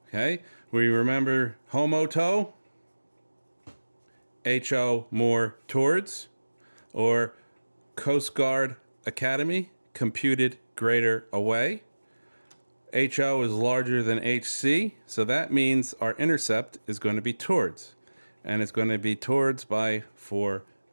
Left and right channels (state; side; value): inverted; both; correlation -1.00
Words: Okay, we remember homoto, HO more towards, or Coast Guard Academy, computed greater away. HO is larger than HC, so that means our intercept is going to be towards. And it's going to be towards by 4